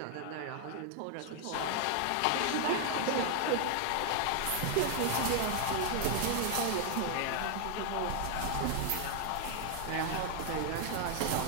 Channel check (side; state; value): both; different; correlation 0.00